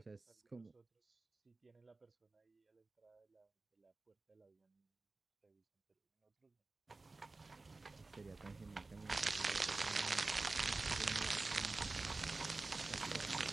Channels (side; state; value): left; quieter; 3.5 dB